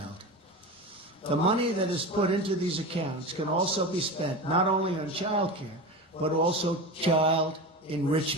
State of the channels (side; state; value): both; normal; correlation 0.26